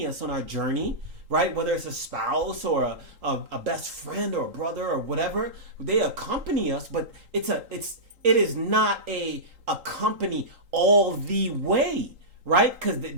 us on our journey, right? Whether it's a spouse or a best friend or a brother or whatever, they accompany us, but it is not a accompany all the way. Right? Because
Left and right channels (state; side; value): late; left; 3.8 ms